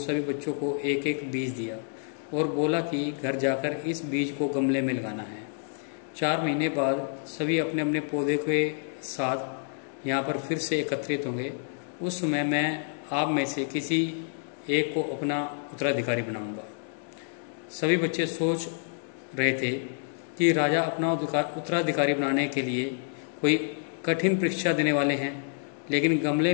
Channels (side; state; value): right; silent; 59 dB below the other